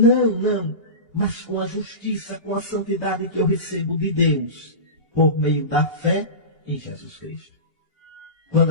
mas com a justiça, com a santidade que eu recebo de Deus, por meio da fé em Jesus Cristo.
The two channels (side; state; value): right; late; 2.8 ms